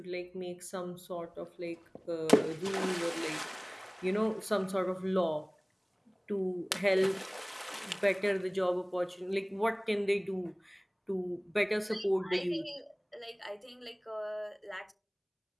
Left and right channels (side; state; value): both; identical; correlation 1.00